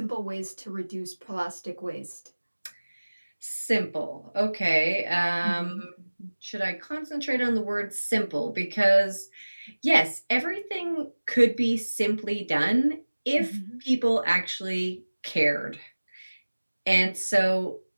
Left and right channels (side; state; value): both; inverted; correlation -1.00